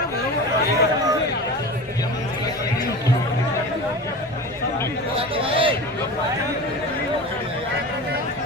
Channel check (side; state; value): both; normal; correlation 0.31